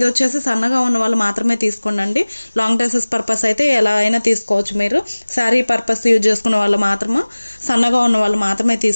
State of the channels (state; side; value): inverted; both; correlation -1.00